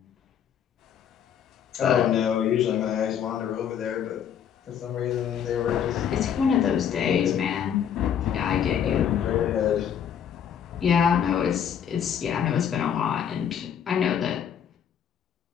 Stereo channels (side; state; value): right; quieter; 8.6 dB